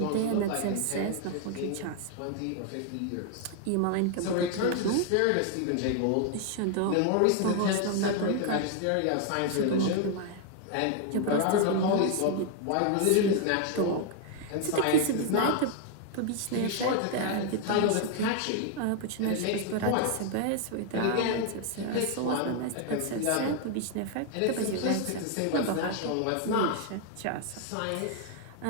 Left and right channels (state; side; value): different; both; correlation 0.00